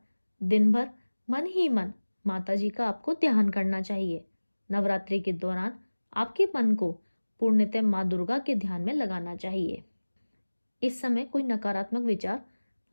दिन भर मन ही मन माता जी का आपको ध्यान करना चाहिए। नवरात्रि के दौरान आपके मन को पूर्णतः माँ दुर्गा के ध्यान में लगाना चाहिए। इस समय कोई नकारात्मक विचार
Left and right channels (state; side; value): inverted; both; correlation -1.00